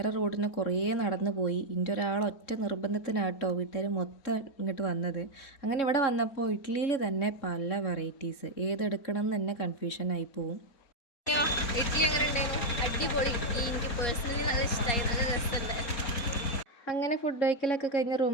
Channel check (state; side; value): late; right; 3.6 ms